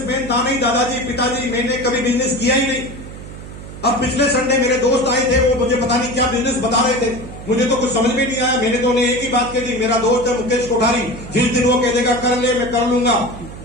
था नहीं, दादाजी पिताजी, मैंने कभी बिजनेस किया ही नहीं। अब पिछले संडे मेरे दोस्त आए थे, वो मुझे पता नहीं क्या बिजनेस बता रहे थे, मुझे तो कुछ समझ में नहीं आया। मैंने तो उन्हें एक ही बात कह दी, मेरा दोस्त है मुकेश कोठारी, जिस दिन वो कह देगा कर ले मैं कर लूंगा।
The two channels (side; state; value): right; noise; hum, 13 dB below the sound